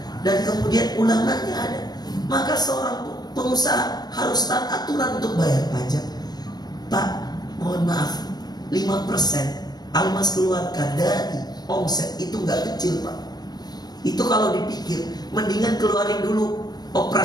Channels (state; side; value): late; right; 0.19 ms